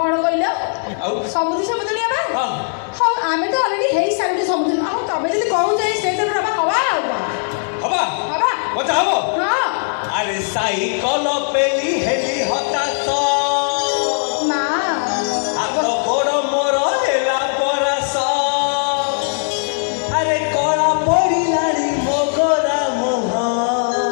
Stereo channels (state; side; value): silent; right; digital silence